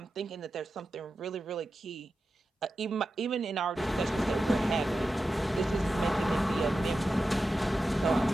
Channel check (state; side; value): normal; both; correlation 0.92